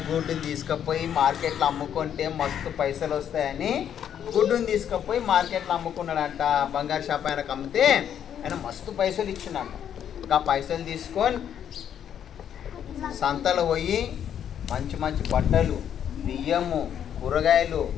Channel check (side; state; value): right; quieter; 9.3 dB